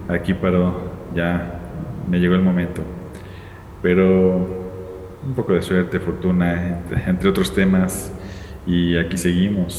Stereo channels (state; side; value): identical; both; correlation 1.00